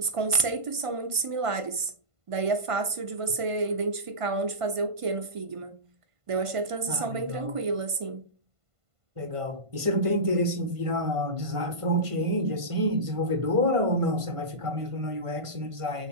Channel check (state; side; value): late; left; 1.5 ms